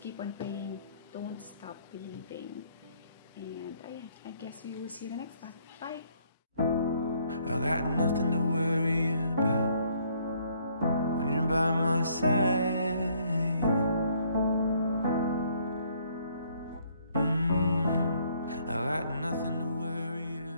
on praying. Don't stop believing. And I guess we will see you in the next one. Bye. I got nothing to worry about when you're by my side. got nothing to worry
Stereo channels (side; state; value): both; inverted; correlation -0.66